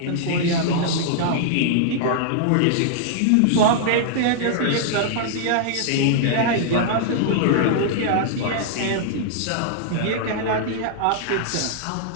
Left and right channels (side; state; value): both; different; correlation -0.02